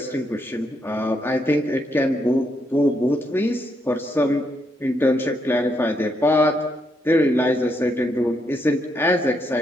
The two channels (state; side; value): normal; both; correlation 0.78